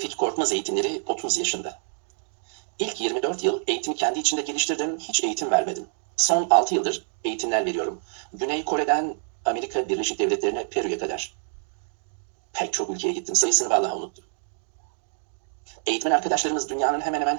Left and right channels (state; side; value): silent; left; digital silence